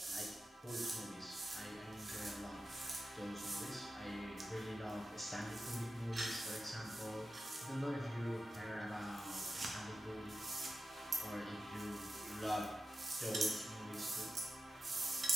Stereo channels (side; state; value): both; normal; correlation 0.92